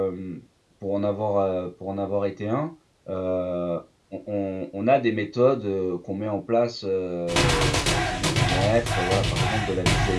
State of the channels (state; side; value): identical; both; correlation 1.00